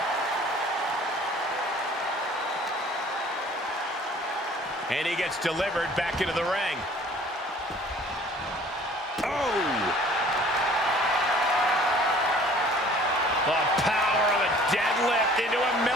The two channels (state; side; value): normal; both; correlation 0.52